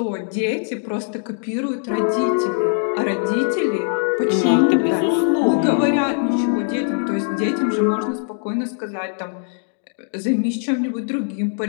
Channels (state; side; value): silent; right; 59 dB below the other